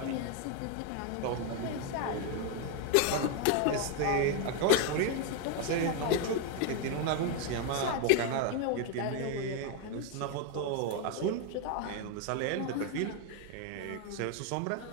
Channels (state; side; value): different; both; correlation 0.01